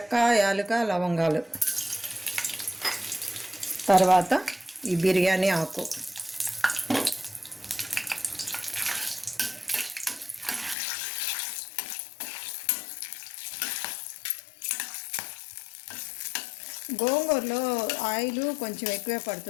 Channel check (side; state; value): right; drops out; at 10.8 s